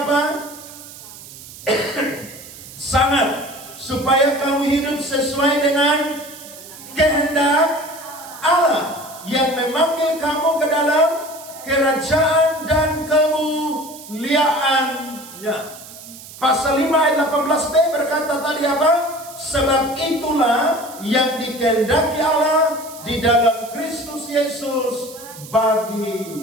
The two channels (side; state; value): right; noise; hiss, 16 dB below the sound